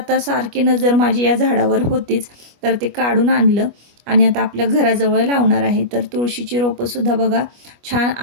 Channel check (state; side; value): late; left; 25 ms